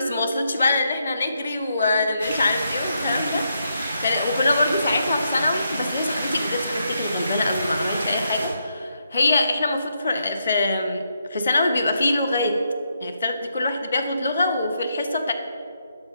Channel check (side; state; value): both; inverted; correlation -0.80